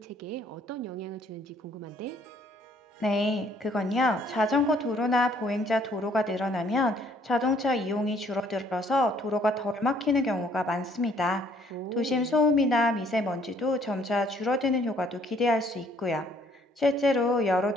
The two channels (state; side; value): normal; both; correlation 0.63